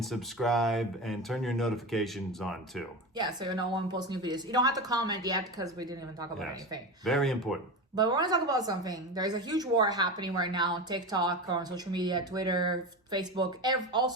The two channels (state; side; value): normal; both; correlation 0.23